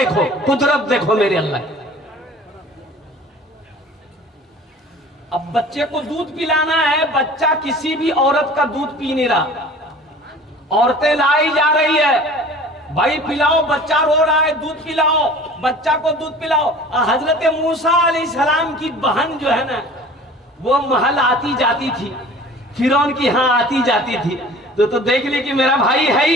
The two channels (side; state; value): both; normal; correlation 0.44